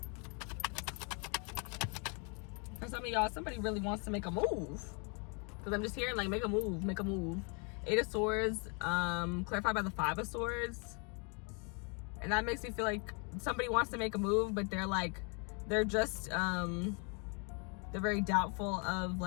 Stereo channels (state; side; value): quieter; right; 35.7 dB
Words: For some of y'all, somebody really wants to make a move. Because I'm just hearing like make a move, make a move. Eight of Swords, clarified by the Five of Swords. And that makes me feel like somebody wants to make a move, but they're just they're very doubtful of